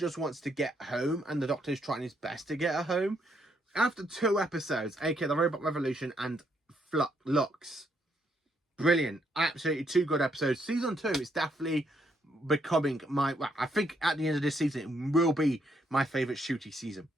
wants to get home, and the Doctor is trying his best to get her home. After 2 episodes, aka the Robot Revolution and Lux, brilliant. Absolutely 2 good episodes. Season 2 is definitely becoming I think at the end of this season, it will be my favourite Shooty season.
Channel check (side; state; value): both; normal; correlation 0.74